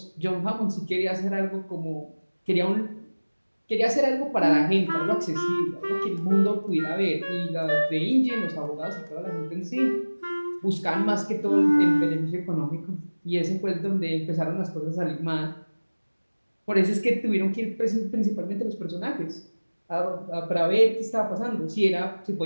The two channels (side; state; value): both; inverted; correlation -1.00